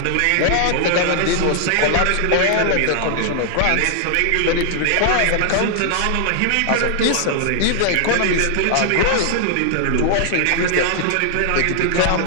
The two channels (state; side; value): different; both; correlation 0.00